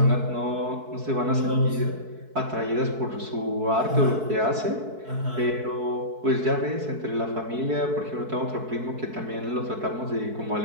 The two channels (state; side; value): late; left; 4.6 ms